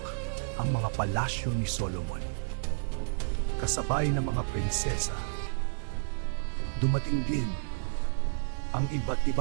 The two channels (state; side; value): silent; left; digital silence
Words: ang mga palasyo ni Solomon. Kasabay ng mga prinsesa, dumating din ang iba't